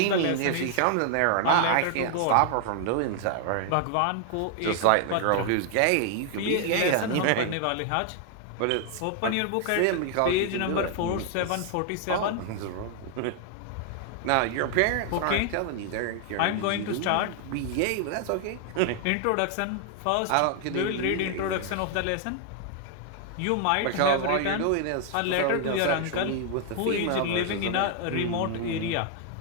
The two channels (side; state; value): both; different; correlation 0.00